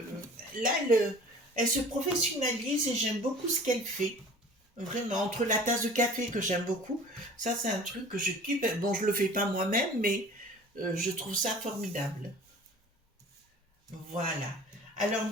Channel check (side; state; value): both; normal; correlation 0.44